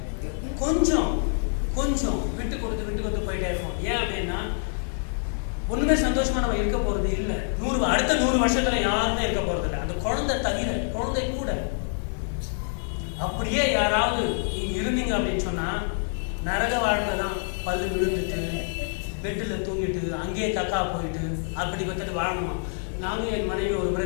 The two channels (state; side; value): silent; right; 61 dB below the other